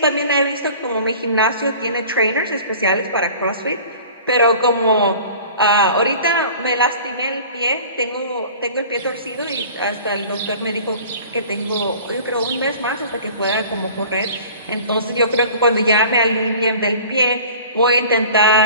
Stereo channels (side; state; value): both; inverted; correlation -0.44